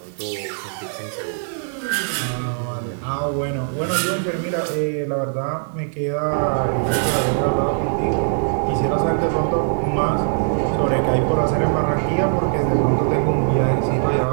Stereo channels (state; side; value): silent; left; 56 dB below the other